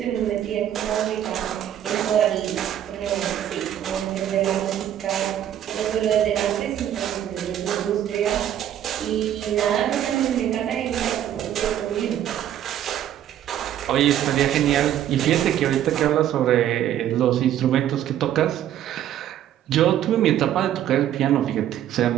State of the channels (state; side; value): quieter; left; 11.1 dB